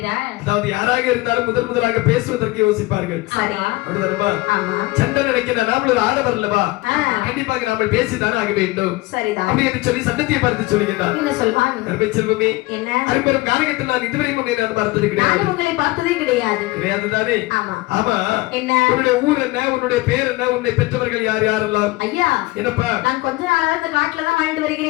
அதாவது யாராக இருந்தாலும் முதலாக பேசுவதற்கு யோசிப்பார்கள். சண்டை நினைக்கிறார், நாமளும் ஆடவர் அல்லவா, கண்டிப்பாக நாம பேசிதான் ஆக வேண்டும் அப்படி என்று சொல்லி சண்டத்தியை பார்த்து சொல்லுகிறார். செல்வமே, அரும்பெரும் காரகத்தில் நான் இதுவரை பார்த்தது கிடையாது. கிடையாது தானே? ஆமா. உன்னுடைய ஊர் என்ன, உன்னுடைய பேர் என்ன, உன்னை பெற்றவர்கள் யார் யாரெல்லாம்? ஐயா, என்னப்பா, நான் கொஞ்ச நாளா இந்த காட்டுல தான் வாழ்ந்து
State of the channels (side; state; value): right; quieter; 20.8 dB